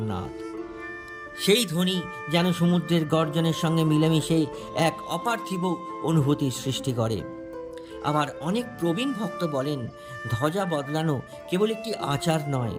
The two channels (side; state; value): both; identical; correlation 1.00